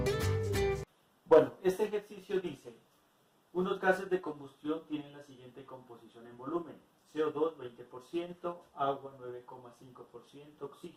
Bueno, este ejercicio dice, unos gases de combustión tienen la siguiente composición en volumen: CO2 20%, agua 9,5%,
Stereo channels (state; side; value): identical; both; correlation 1.00